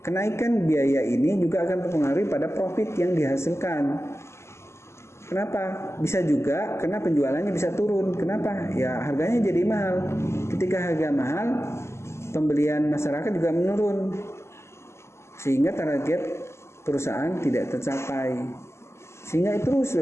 Kenaikan biaya ini juga akan mempengaruhi pada profit yang dihasilkan. Kenapa? Bisa juga karena penjualannya bisa turun. Kenapa? Ya harganya jadi mahal. Ketika harga mahal, pembelian masyarakat juga menurun. Sehingga target perusahaan tidak tercapai. Sehingga itu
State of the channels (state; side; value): late; right; 0.13 ms